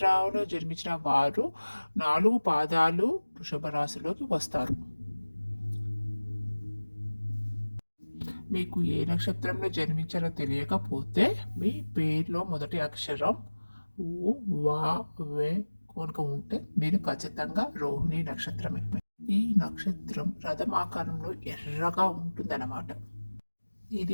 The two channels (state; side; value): inverted; both; correlation -1.00